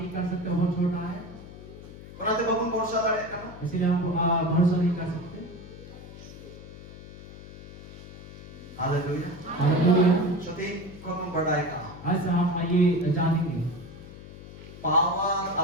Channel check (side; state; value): left; noise; hum, 15 dB below the sound